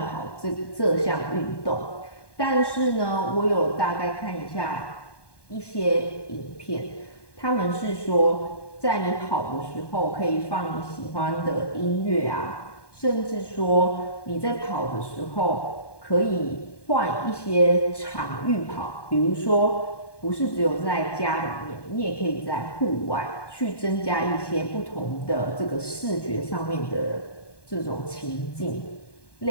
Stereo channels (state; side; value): late; right; 1.2 ms